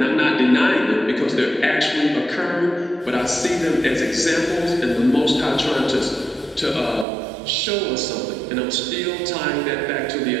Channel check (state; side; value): drops out; left; at 7.1 s